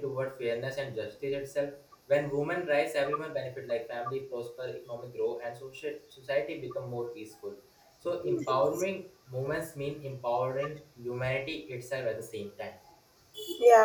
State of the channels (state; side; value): identical; both; correlation 1.00